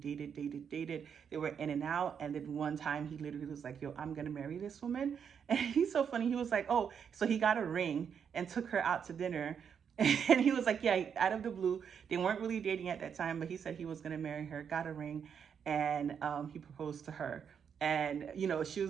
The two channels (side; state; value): left; quieter; 7.4 dB